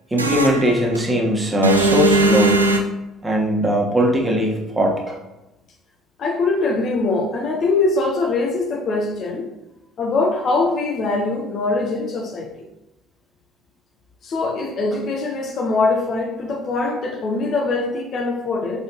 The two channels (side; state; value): both; normal; correlation 0.47